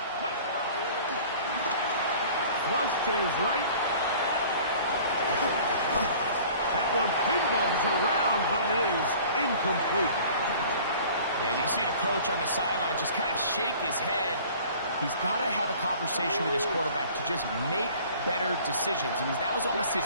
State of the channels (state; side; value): inverted; both; correlation -0.47